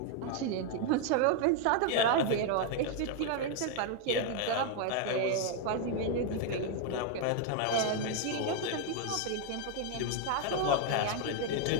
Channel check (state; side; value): different; both; correlation 0.00